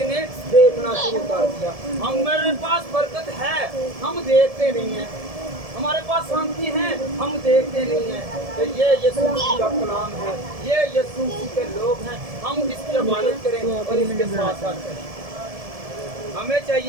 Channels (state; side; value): late; left; 1.7 ms